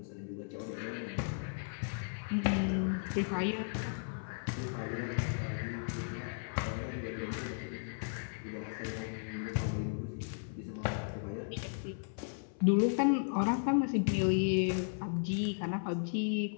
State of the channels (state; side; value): silent; right; 54 dB below the other